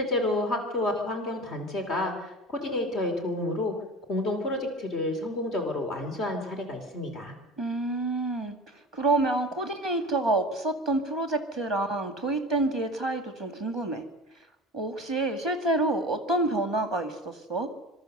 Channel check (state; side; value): normal; both; correlation 0.34